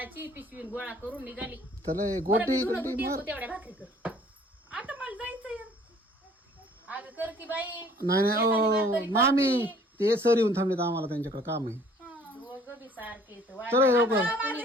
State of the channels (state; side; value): normal; both; correlation 0.55